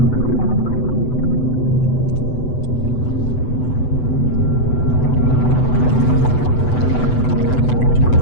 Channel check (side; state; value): right; late; 8.0 ms